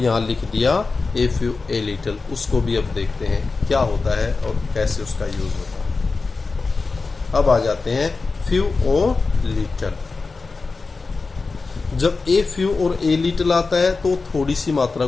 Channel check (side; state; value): right; quieter; 4.1 dB